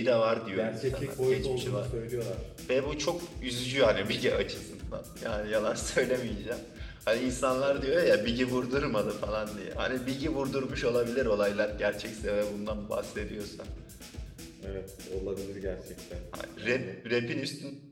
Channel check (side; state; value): both; identical; correlation 1.00